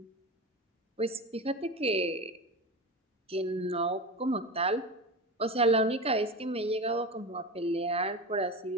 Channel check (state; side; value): normal; both; correlation 0.25